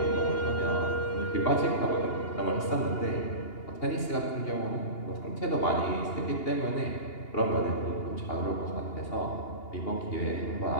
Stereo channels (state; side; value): late; right; 2.8 ms